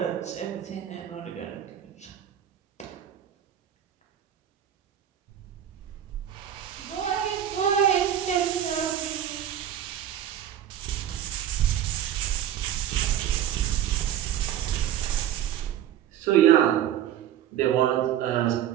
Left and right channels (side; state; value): left; quieter; 10.7 dB